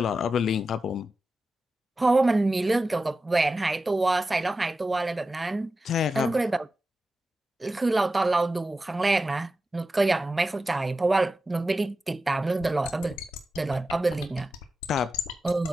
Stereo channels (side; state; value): both; normal; correlation 0.92